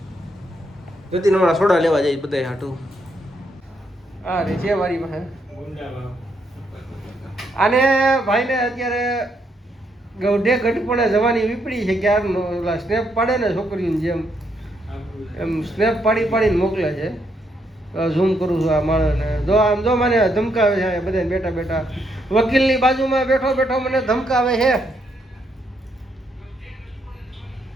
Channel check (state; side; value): normal; both; correlation 0.76